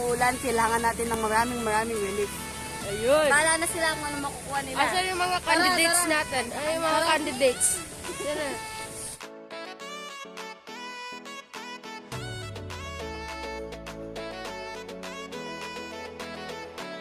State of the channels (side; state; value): both; identical; correlation 1.00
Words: kailangan natin ng maraming relief. Ayun. Bahala na sila kung ano makukuha nila. Asan yung mga candidates Tara. natin? Ay, yung mga candidates. Yan na.